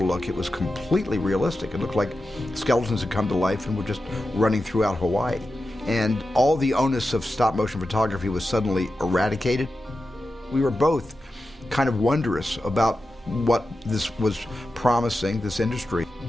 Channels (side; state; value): both; normal; correlation 0.91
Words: look, it was completely realistic. It looked like skeletons had come to life and were just running throughout Hawaii. And all the onus of stop-motion photography was suddenly eradicated. We were both kind of wondrous about what this was promising, this industry.